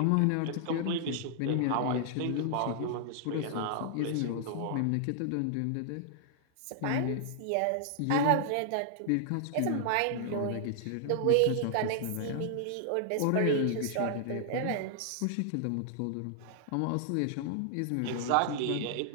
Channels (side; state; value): both; different; correlation -0.01